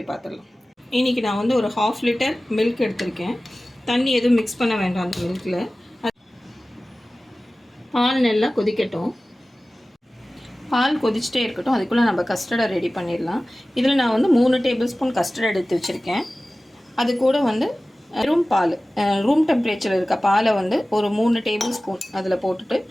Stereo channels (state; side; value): normal; both; correlation 0.97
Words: பார்த்துடலாம். இன்றைக்கி நான் வந்து ஒரு 1/2 லிட்டர் மில்க் எடுத்திருக்கேன். தண்ணி எதுவும் மிக்ஸ் பண்ண வேண்டாம் அந்த மில்கில். பால் நல்லா கொதிக்கட்டும். பால் கொதிச்சுட்டே இருக்கட்டும். அதுக்குள்ளே நம்ம கஸ்டர்டை ரெடி பண்ணிடலாம். இதில் நான் வந்து 3 டேபிள் ஸ்பூன் கஸ்டர்ட் எடுத்து வச்சுருக்கேன். அது கூட வந்து ரூம் டெம்பரேச்சர் இருக்க பாலை வந்து ஒரு 3 டேபிள் ஸ்பூன் அதில் போட்டுட்டு